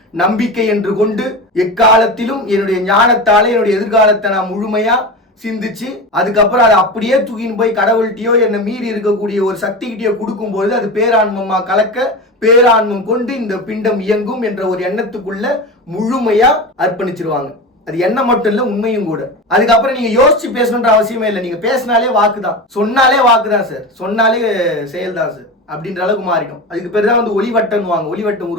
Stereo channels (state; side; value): normal; both; correlation 0.25